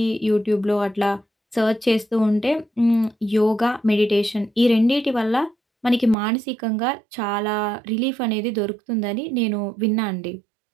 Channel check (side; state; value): left; drops out; at 6.2 s